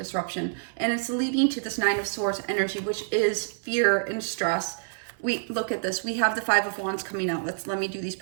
And it's leading to this Nine of Swords energy, which is fear and stress. We look at this. We have the Five of Wands coming out. Let me do these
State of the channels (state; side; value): silent; left; 60 dB below the other